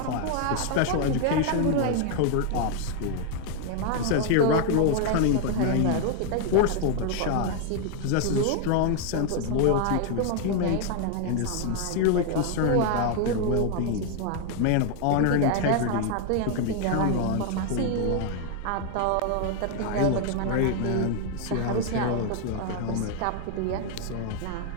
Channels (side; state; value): both; different; correlation 0.00